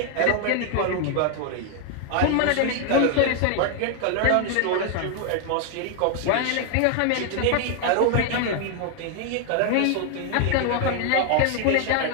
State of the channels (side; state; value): both; different; correlation 0.00